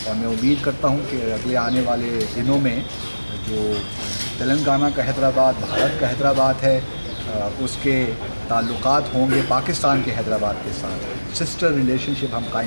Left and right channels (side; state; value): both; inverted; correlation -1.00